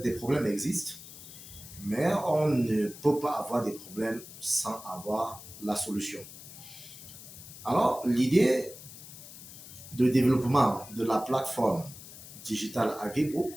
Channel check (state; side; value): noise; left; hiss, 15 dB below the sound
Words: des problèmes existent, mais on ne peut pas avoir des problèmes sans avoir la solution. Alors, l'idée de développement de la plateforme digitale AgriBook,